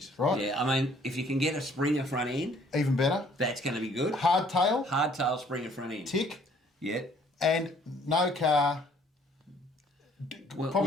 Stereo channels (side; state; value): both; normal; correlation 0.60